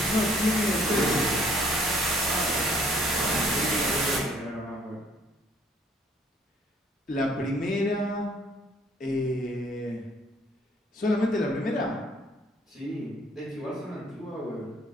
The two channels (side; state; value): both; normal; correlation 0.60